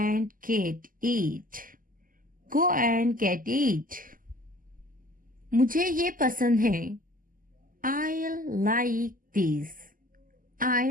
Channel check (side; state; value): left; late; 0.41 ms